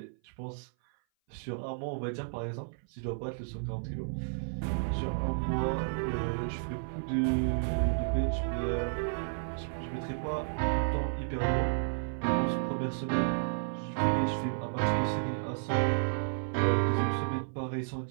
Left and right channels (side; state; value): left; silent; 56 dB below the other